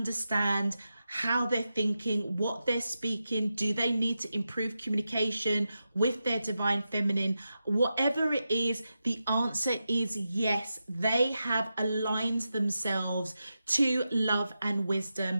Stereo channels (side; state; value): both; inverted; correlation -0.89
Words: how they're thinking, what they're speaking. Do they need to improve communication with their divine feminine? Whatever it is, the answer is yes. They have aligned themselves to love and wisdom,